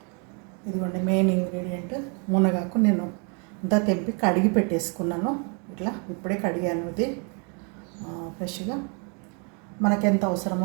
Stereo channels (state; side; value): quieter; left; 37.0 dB